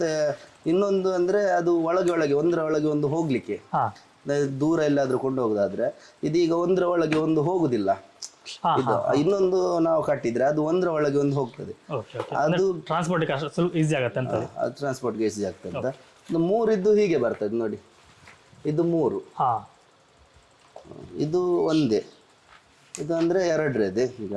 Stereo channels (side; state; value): both; identical; correlation 1.00